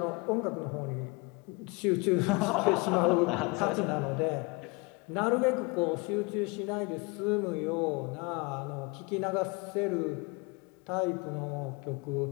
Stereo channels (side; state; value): right; quieter; 27.6 dB